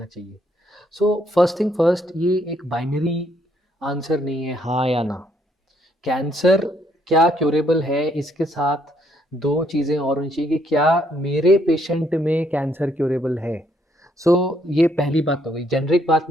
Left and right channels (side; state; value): both; normal; correlation 0.71